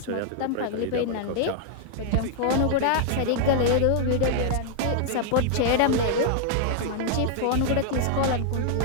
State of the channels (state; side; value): different; both; correlation 0.00